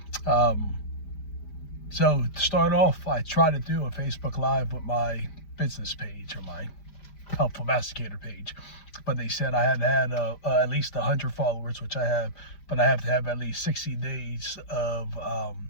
Um, so, to start off, I try to do a Facebook Live with my business page or my Helpful Masticator page, but they said I had to have at least 100 followers, which I have, but I have to have at least 60 days of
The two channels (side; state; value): right; late; 5.0 ms